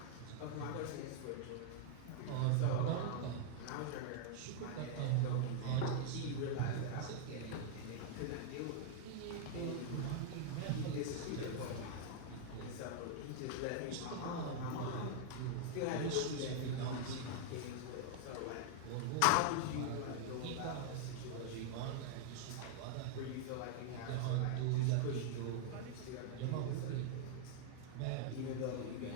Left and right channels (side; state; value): both; different; correlation -0.01